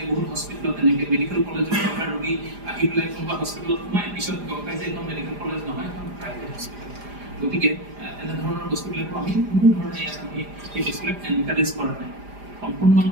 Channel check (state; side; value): late; left; 4.9 ms